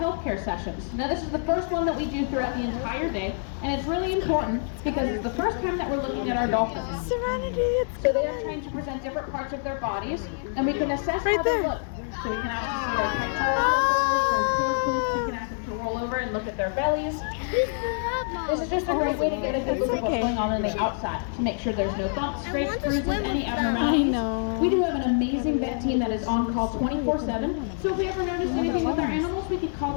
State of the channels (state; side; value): silent; right; 61 dB below the other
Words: sessions. Now this is the first one that we do throughout the entire day, and it's really important because it's the first time that we're looking at our dolphins. Serenity, So they are trained to present different parts of their bodies, and we can assess how they look. So we can actually see their pectorals, their tails, we can ask them to roll over and look at their bellies. This is just a great way to get a good look at what's going on the outside, to make sure there's no bumps, scrapes, bruises, any abnormalities. We do have an amazing vet team that is on call 24/7, so if we ever notice anything with our animals, we could call